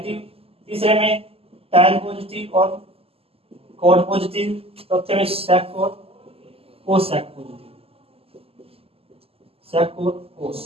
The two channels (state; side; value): late; left; 0.28 ms